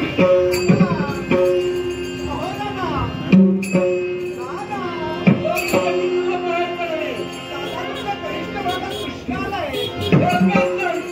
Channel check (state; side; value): identical; both; correlation 1.00